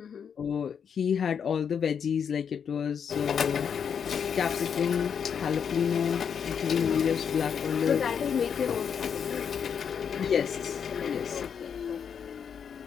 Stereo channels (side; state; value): right; quieter; 7.3 dB